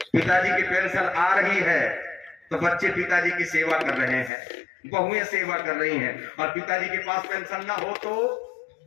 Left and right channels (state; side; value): drops out; right; at 4.3 s